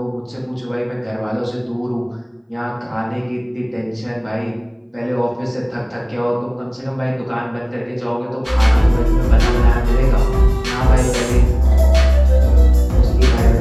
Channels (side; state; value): both; identical; correlation 1.00